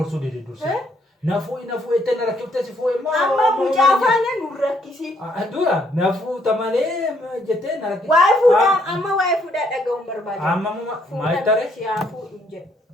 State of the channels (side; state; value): both; normal; correlation 0.69